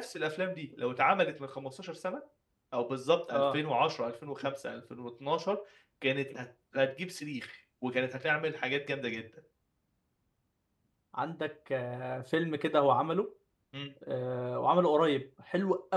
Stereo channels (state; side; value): identical; both; correlation 1.00